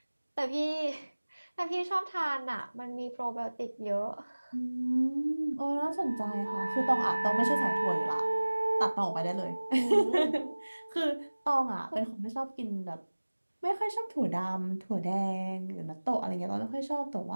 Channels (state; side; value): inverted; both; correlation -1.00